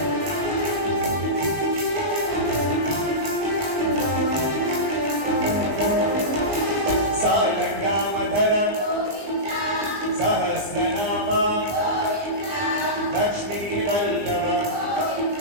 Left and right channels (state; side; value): late; left; 20 ms